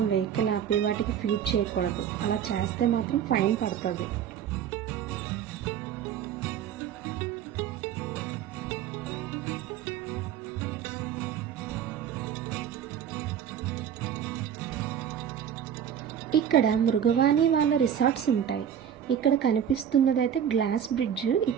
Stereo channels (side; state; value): left; quieter; 9.1 dB